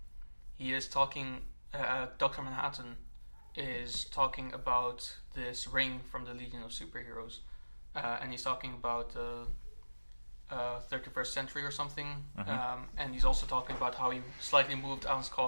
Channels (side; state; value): both; inverted; correlation -1.00